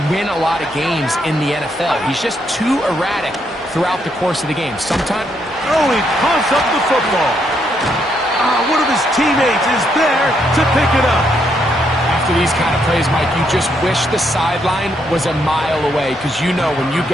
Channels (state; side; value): normal; both; correlation 0.76